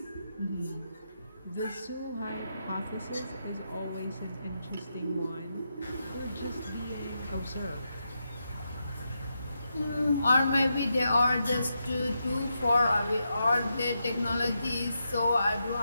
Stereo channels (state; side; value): inverted; both; correlation -0.85